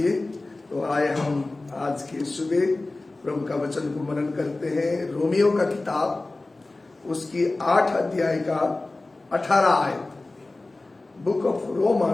तो आए हम आज के सुबह प्रभु का वचन को मनन करते हैं। रोमियो का किताब उसकी 8 अध्याय का 18 आयत, book of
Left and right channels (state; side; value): quieter; right; 3.1 dB